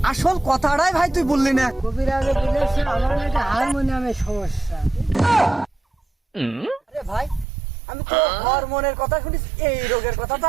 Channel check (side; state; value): left; drops out; at 7.5 s